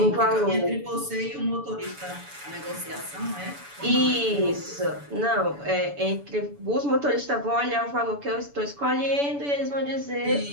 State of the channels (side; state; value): left; late; 7.0 ms